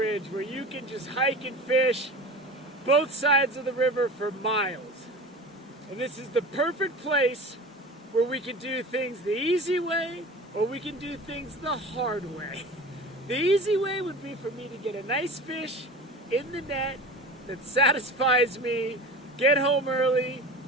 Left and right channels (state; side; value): normal; both; correlation 0.34